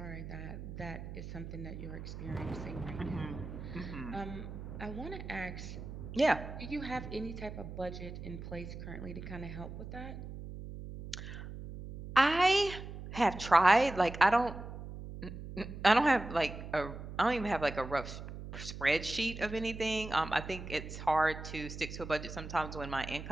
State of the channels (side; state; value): right; noise; hum, 10 dB below the sound